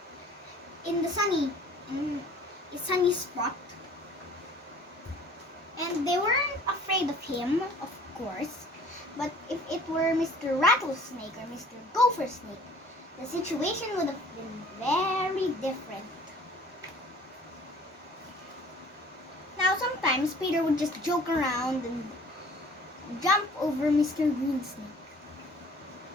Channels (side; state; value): both; normal; correlation 0.51